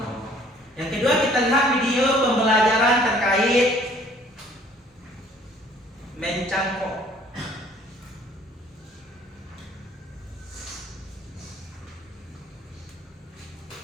Yang kedua kita lihat video pembelajaran terkait mencangkok.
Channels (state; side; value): normal; both; correlation 0.57